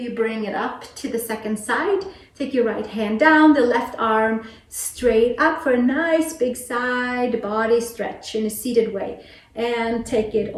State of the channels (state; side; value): identical; both; correlation 1.00